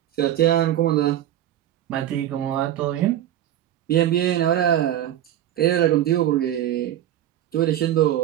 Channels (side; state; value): left; quieter; 12.0 dB